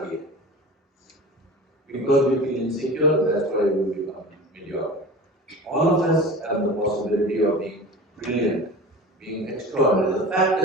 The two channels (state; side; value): normal; both; correlation 0.35